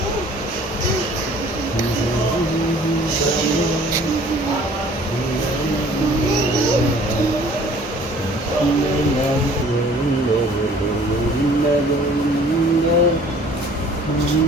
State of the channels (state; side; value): noise; right; hum, 21 dB below the sound